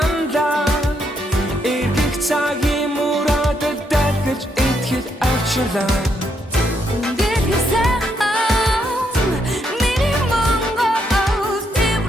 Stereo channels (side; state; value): both; normal; correlation 0.76